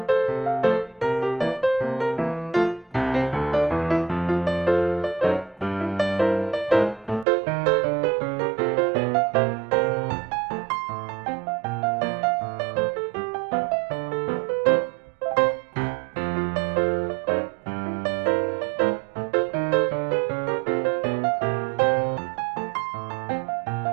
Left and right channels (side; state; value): left; drops out; at 7.2 s